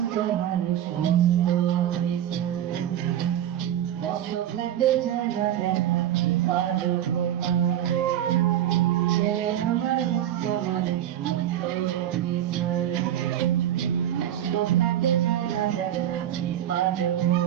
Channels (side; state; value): left; quieter; 11.3 dB